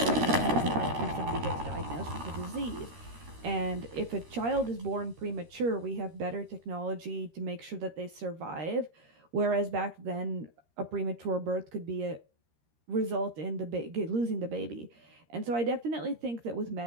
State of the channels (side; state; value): left; late; 13 ms